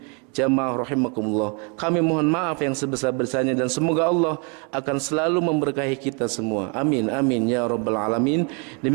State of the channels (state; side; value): quieter; left; 34.9 dB